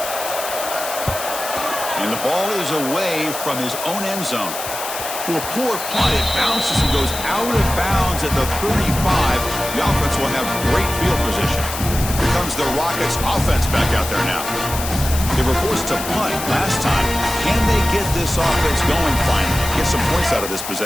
And the ball is away from his own end zone. Well, poor punt. It bounces and goes out of bounds at the 35. The offense will have great field position. Here comes the Rockets offense back out there now. They were forced to punt last time. Can they get this offense going finally? Get some points out of this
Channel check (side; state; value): left; noise; hiss, 7 dB below the sound